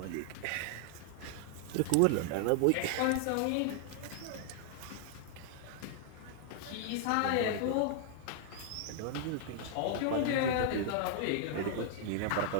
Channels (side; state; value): both; different; correlation -0.01